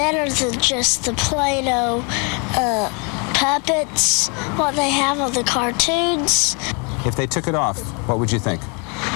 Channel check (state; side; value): quieter; right; 33.7 dB